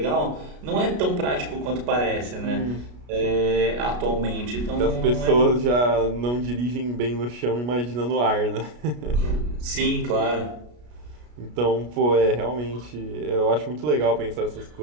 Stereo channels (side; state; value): left; late; 33 ms